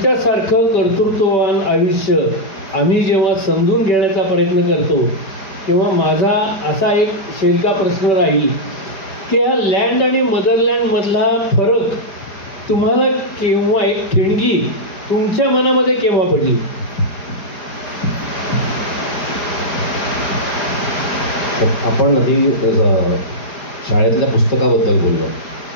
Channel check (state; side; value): late; right; 4.8 ms